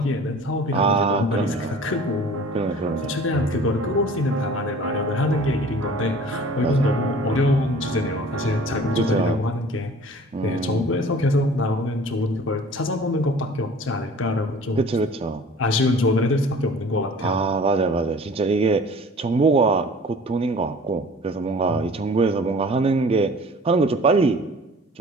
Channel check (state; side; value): normal; both; correlation 0.46